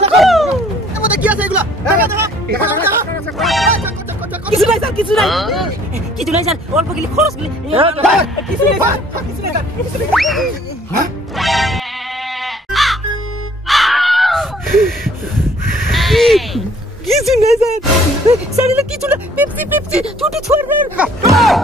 আমাদের কি আছে এগুলা দেখা দেখা কিছু নাই স্যার কিছু নাই স্যার অল্প গলি খরচ গলি কিছু নাই স্যার হ্যাঁ কিছু নাই স্যার স্যার এটা কিছু না পেপসি ছুটি ছড়বেন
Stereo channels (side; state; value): both; normal; correlation 0.57